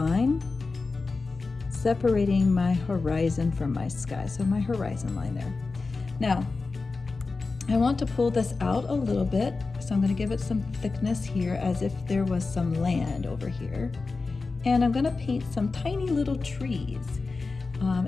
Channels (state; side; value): quieter; right; 4.0 dB